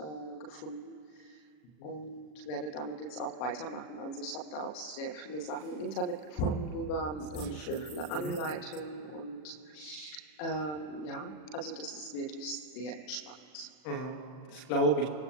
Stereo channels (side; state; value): right; late; 40 ms